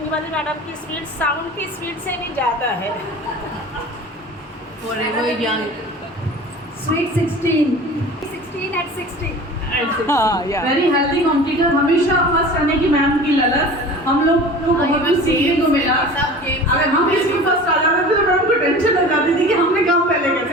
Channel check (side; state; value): both; normal; correlation 0.39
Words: की स्पीड साउंड की स्पीड से भी ज़्यादा है। Forever young. Sweet 16. 16 at 60. हाँ yeah. वेरी हेल्दी कॉम्पिटिटर, हमेशा फर्स्ट आने की मैम की ललक हम लोग को बहुत कुछ सीखने को मिला। अगर हम इसमें फर्स्ट आ जाते थे तो मैडम को टेंशन हो जाती थी कि हमने काम पहले